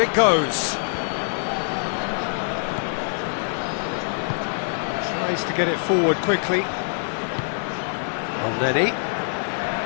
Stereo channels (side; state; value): right; silent; 63 dB below the other